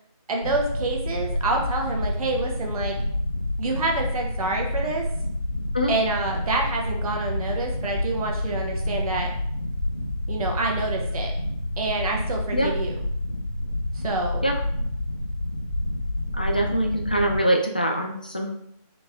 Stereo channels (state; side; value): inverted; both; correlation -0.59